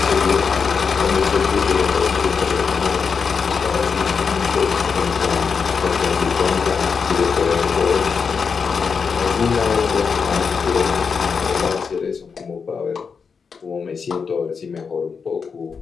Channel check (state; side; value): quieter; right; 5.7 dB